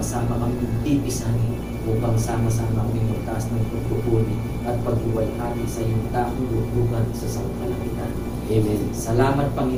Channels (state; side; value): identical; both; correlation 1.00